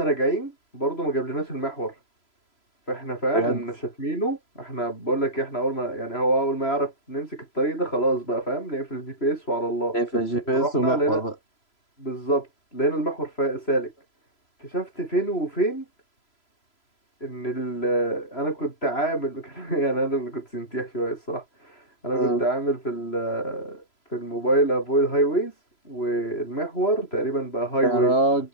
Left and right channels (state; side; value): late; right; 3.0 ms